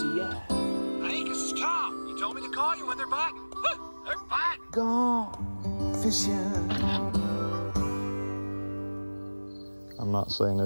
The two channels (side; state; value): both; inverted; correlation -1.00